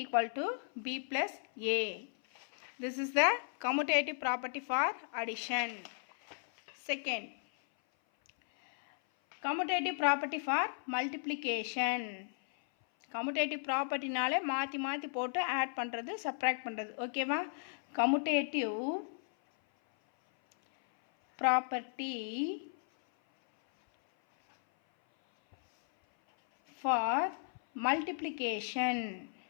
equal to b plus a. this is the commutative property for addition. Second, commutative property for multiplication. Commutative ப்ராப்பர்ட்டினாலே மாற்றி மாற்றி போட்டு add பண்ணுறது, subtract பண்ணுறது. ஓகேவா. Commutative property for multiplication.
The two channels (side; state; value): right; silent; 54 dB below the other